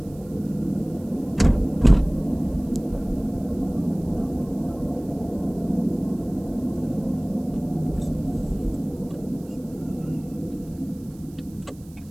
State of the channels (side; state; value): right; noise; hiss, 26 dB below the sound